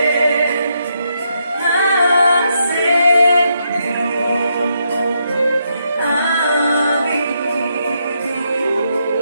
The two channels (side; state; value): both; inverted; correlation -0.79